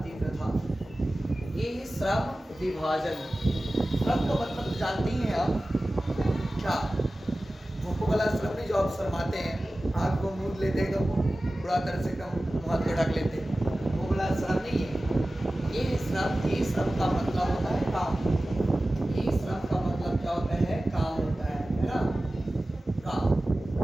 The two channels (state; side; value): normal; both; correlation 0.96